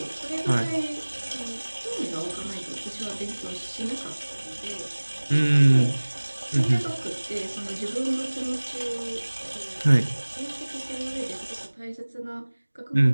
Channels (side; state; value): both; inverted; correlation -1.00